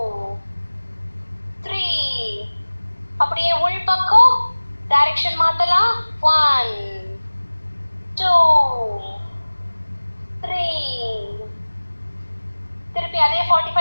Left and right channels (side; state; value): both; inverted; correlation -1.00